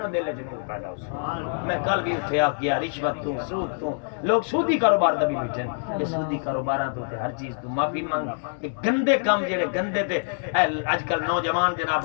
دل وچ نور پیدا ہو میں کل بھی اٹھے آ گیا رشوت تو سود تو لوگ سودی کاروبار دا بھی بیٹھن یہ سودی کاروباراں تو تے ہر چیز تو معافی مانگ کہ گندے کام جڑے گندے تے اج کل نوجوان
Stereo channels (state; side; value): silent; right; digital silence